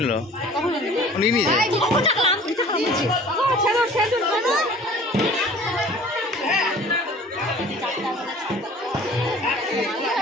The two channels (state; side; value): normal; both; correlation 0.47